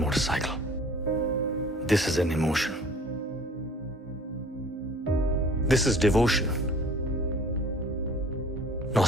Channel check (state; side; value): normal; both; correlation 0.49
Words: This is an emotion. This is devotion,